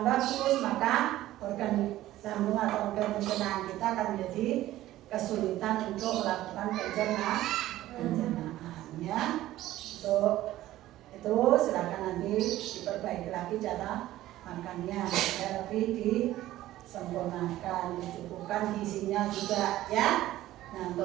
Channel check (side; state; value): left; quieter; 14.9 dB